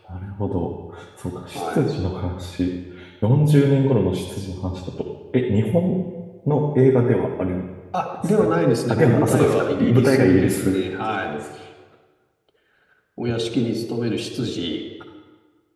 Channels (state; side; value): identical; both; correlation 1.00